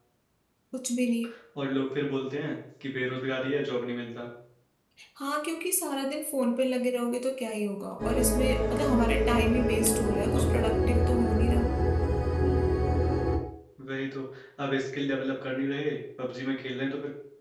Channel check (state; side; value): identical; both; correlation 1.00